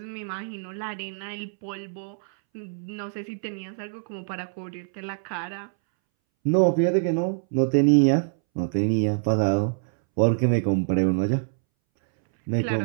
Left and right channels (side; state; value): left; silent; 62 dB below the other